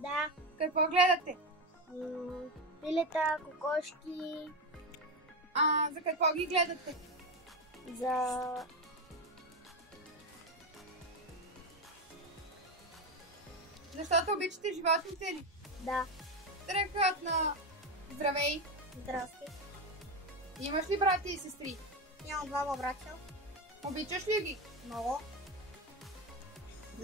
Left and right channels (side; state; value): both; normal; correlation 0.13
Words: Какво гледате? Пилета, кокошки. За какво ги гледате? Защото обичате животните ли? Да. Страхотно! Здравей! Здрасти. Имаш ли брати и сестри? Имам двама братя. Обичаш ли ги? Много.